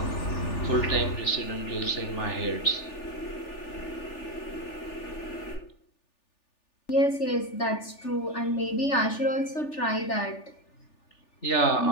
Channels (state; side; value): late; right; 3.4 ms